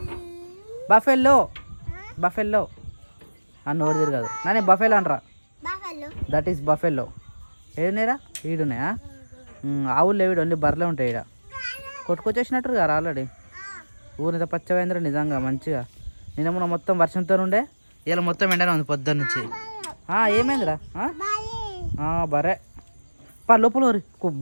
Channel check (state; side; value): inverted; both; correlation -1.00